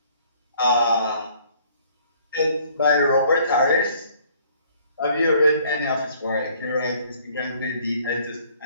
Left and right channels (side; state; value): both; inverted; correlation -0.59